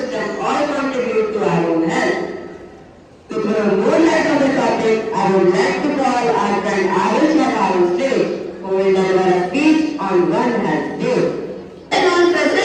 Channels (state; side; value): identical; both; correlation 1.00